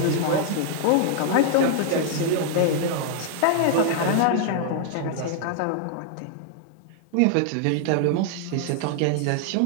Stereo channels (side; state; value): both; different; correlation 0.00